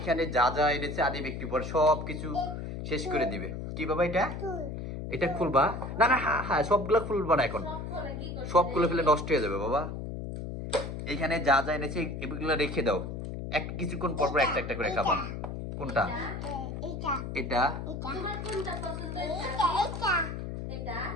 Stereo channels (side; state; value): left; noise; hum, 6 dB below the sound